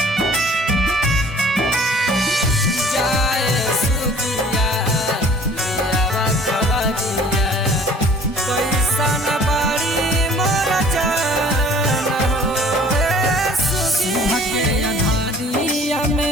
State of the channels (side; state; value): both; normal; correlation 0.51